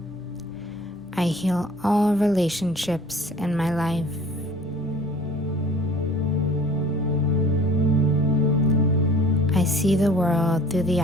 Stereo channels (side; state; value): both; normal; correlation 0.47